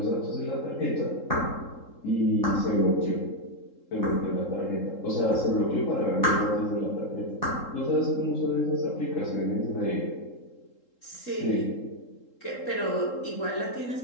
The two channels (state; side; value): late; right; 3.8 ms